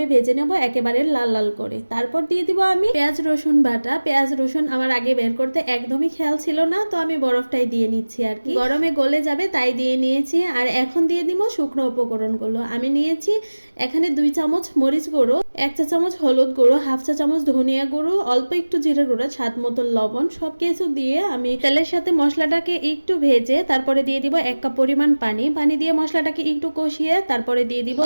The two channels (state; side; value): inverted; both; correlation -1.00